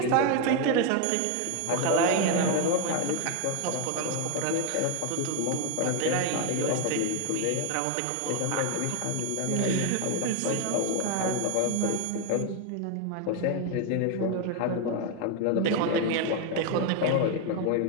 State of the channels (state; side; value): different; both; correlation 0.01